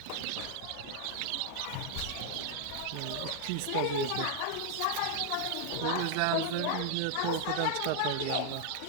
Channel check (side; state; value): both; different; correlation 0.00